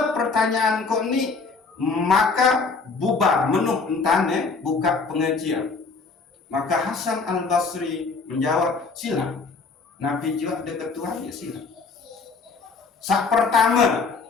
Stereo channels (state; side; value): quieter; right; 4.4 dB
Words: pertanyaan kau ni, maka bubar menuh entane buka pengajian. Maka Hasan al-Basri menjawab, sila. Nabi juga ada ketuan, ya sila. Sak pertama,